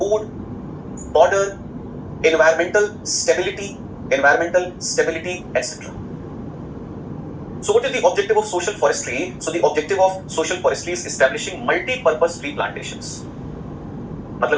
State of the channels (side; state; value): both; identical; correlation 1.00